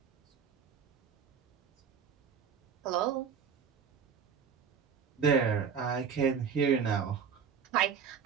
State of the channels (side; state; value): left; quieter; 6.9 dB